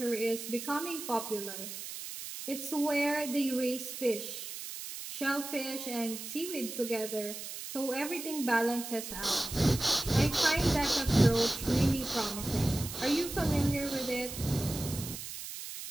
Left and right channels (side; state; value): right; noise; hiss, 9 dB below the sound